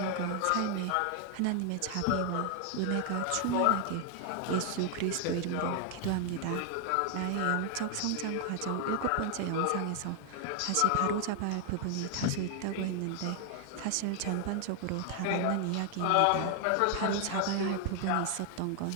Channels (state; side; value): different; both; correlation 0.00